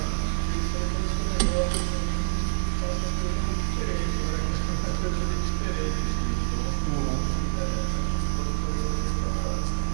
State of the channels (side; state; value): left; silent; digital silence